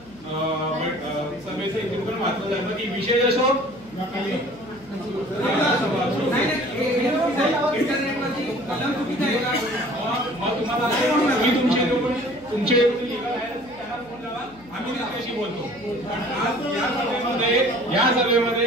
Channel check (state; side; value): noise; left; hum, 25 dB below the sound